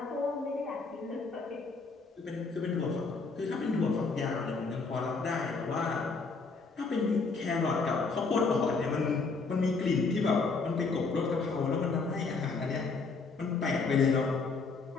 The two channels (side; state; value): right; quieter; 4.2 dB